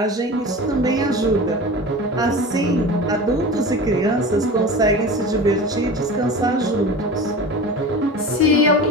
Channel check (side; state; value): both; normal; correlation 0.33